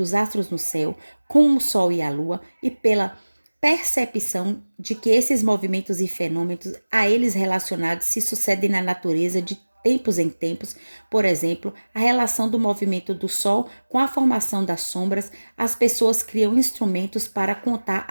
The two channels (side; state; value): both; inverted; correlation -1.00